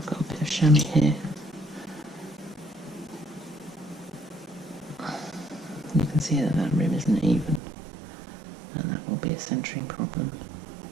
got a bit of chamois here. You can see that that rim isn't even, and that will be a centering problem.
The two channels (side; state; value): left; drops out; at 7.6 s